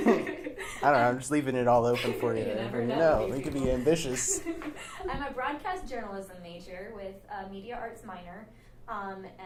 don't know, I'm just leaving it all open for you. You never know. We could be ambitious. I'm a broadcast journalism major with a media arts minor,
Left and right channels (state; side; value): identical; both; correlation 1.00